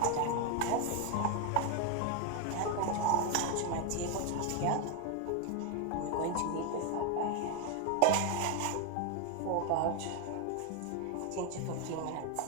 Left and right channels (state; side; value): different; both; correlation 0.01